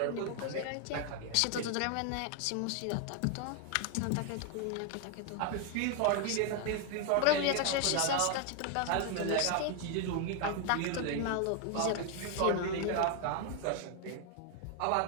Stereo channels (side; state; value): both; different; correlation 0.01